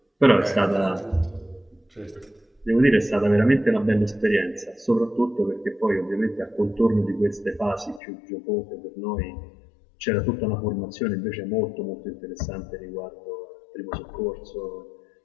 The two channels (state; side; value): drops out; right; at 8.0 s